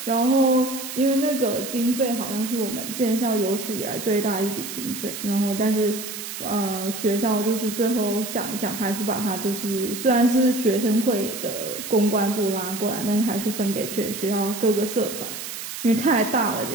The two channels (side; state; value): right; noise; hiss, 8 dB below the sound